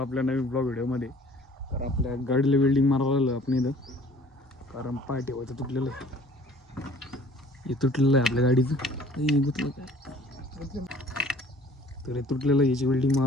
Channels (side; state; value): both; normal; correlation 0.52